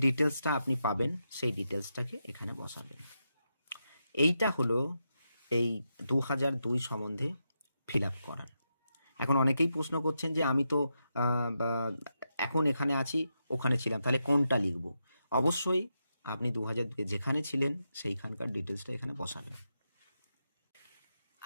ডিটেলসটা আপনি পাবেন সেই ডিটেলসটাকে এখানে বসাবেন। এইটা হলো এই 2002 সম্বন্ধে ফিল আপ করার। এখন অনেকেই প্রশ্ন করছেন যে আমি তো এখন এখানে আছি, ওখানে ছিলাম, তাহলে কোনটা লিখব? অবশ্যই আপনি 2002-এ যেখানে ছিলেন সেইখানকার ডিটেলসটা এখানে বসাবেন।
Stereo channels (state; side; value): inverted; both; correlation -0.86